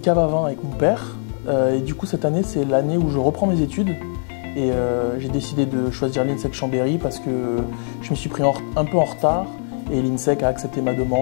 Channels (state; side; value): silent; right; digital silence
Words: à vin avec mon père et du coup cette année c'est l'année où je reprends mes études. Et j'ai décidé de choisir l'INSEC Chambéry parce que je me suis pris un peu en retard et l'INSEC a accepté ma